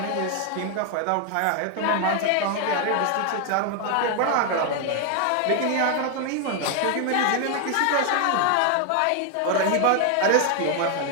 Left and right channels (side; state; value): both; different; correlation 0.00